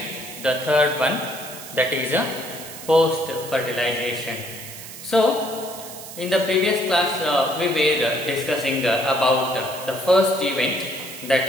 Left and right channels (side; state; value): right; noise; hiss, 13 dB below the sound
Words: the third one, that is a post-fertilization. So, in the previous class, we were discussing about the first event,